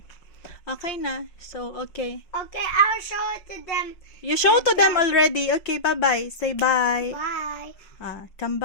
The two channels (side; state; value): right; late; 5.4 ms